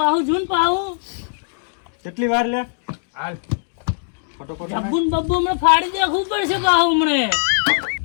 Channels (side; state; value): right; silent; 65 dB below the other